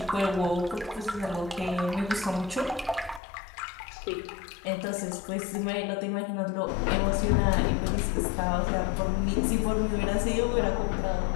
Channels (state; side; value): drops out; right; at 3.2 s